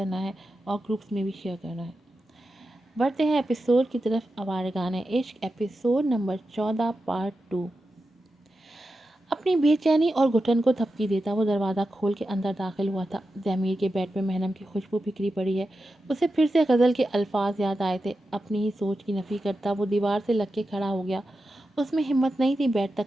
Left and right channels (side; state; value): both; normal; correlation 0.90